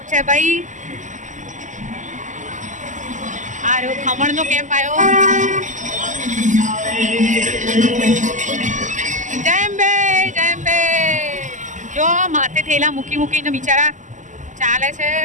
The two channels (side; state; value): left; late; 0.36 ms